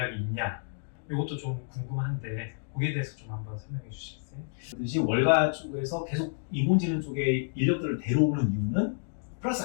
있냐, 이것도 좀 궁금한데 거기에 대해서 좀 한번 설명해 주시겠어요? 그듯이 월가 쪽에서 계속 인공지능 쪽에 인력들을 데려오는 이유는 플러스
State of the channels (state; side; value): silent; right; digital silence